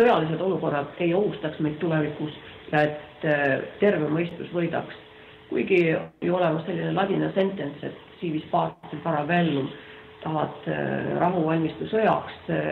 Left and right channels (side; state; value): both; identical; correlation 1.00